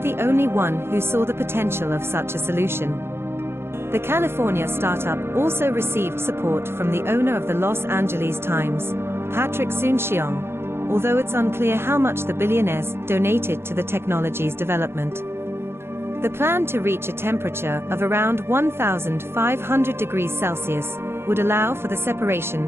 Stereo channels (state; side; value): late; left; 0.12 ms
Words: the only one who saw the potential of such a solution. The California startup also received support from the owner of the Los Angeles Times, Patrick Soon-Shiong, although it's unclear how much the billionaires donated to the technology's development. The plan to reach a temperature of around 1500 degrees Celsius would allow for the